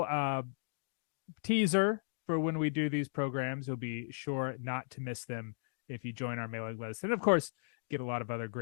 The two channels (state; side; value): silent; right; digital silence